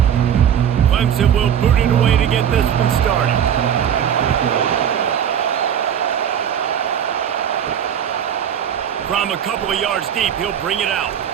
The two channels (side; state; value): left; quieter; 9.0 dB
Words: Clemson will boot it away to get this one started. From a couple of yards deep, he'll bring it out.